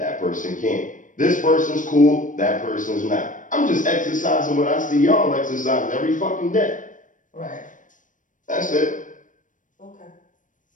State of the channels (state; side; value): late; right; 0.38 ms